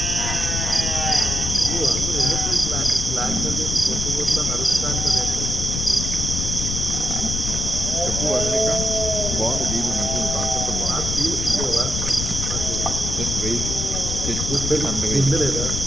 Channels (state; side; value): noise; left; rumble, 3 dB below the sound